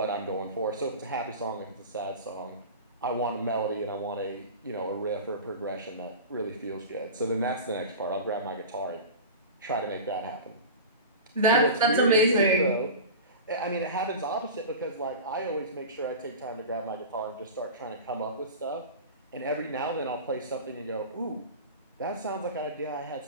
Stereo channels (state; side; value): inverted; both; correlation -0.31